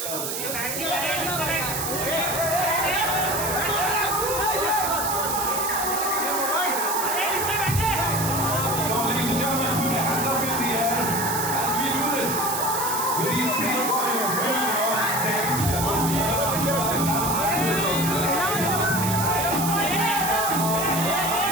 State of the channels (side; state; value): right; noise; hiss, 3 dB below the sound